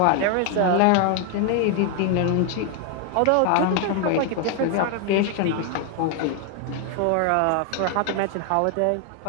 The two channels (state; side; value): different; both; correlation 0.00